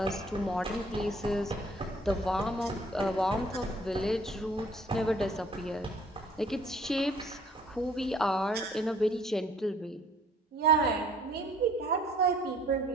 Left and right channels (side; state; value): both; normal; correlation 0.58